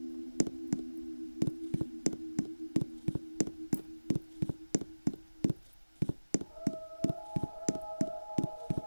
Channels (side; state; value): both; inverted; correlation -1.00